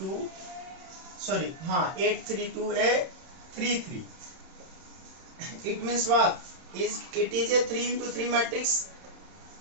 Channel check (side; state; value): left; late; 31 ms